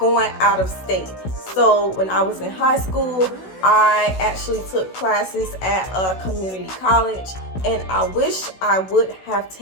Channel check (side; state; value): right; late; 16 ms